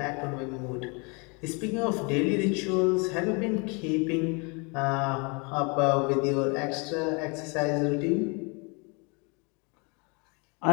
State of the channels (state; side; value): quieter; right; 31.7 dB